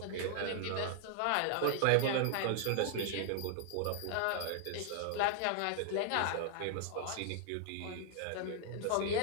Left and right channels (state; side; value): different; both; correlation 0.00